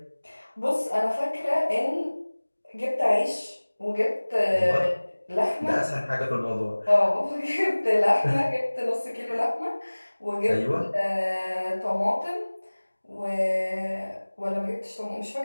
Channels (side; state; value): both; inverted; correlation -1.00